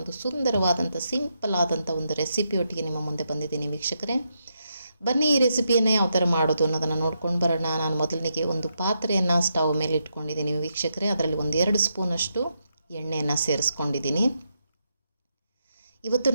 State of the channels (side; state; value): both; inverted; correlation -0.82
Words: ಸುಂದರವಾದಂಥ ಸಿಂಪಲ್ ಆದಂಥ ಒಂದು ರೆಸಿಪಿಯೊಟ್ಟಿಗೆ ನಿಮ್ಮ ಮುಂದೆ ಬಂದಿದ್ದೀನಿ ವೀಕ್ಷಕರೇ. ಬನ್ನಿ ಈ ರೆಸಿಪಿಯನ್ನು ಯಾವ ಥರ ಮಾಡೋದು ಅನ್ನೋದನ್ನು ನೋಡ್ಕೊಂಡು ಬರೋಣ. ನಾನು ಮೊದಲನಿಗೆ ಒಂದು ಪಾತ್ರೆಯನ್ನು ಸ್ಟವ್ ಮೇಲೆ ಇಟ್ಕೊಂಡಿದ್ದೀನಿ ವೀಕ್ಷಕರೇ. ಅದರಲ್ಲಿ ಒಂದು 2 ಸ್ಪೂನಷ್ಟು ಎಣ್ಣೆಯನ್ನು ಸೇರಿಸ್ಕೊಂಡಿದ್ದೀನಿ. ಇವತ್ತು